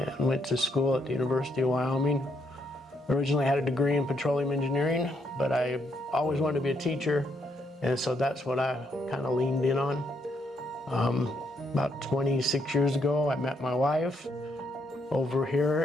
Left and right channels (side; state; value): both; normal; correlation 0.75